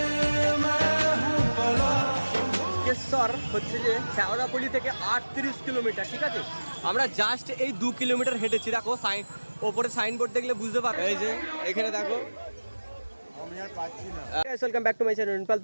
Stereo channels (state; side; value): inverted; both; correlation -1.00